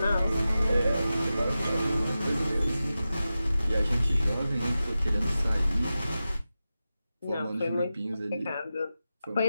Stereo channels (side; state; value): both; inverted; correlation -0.93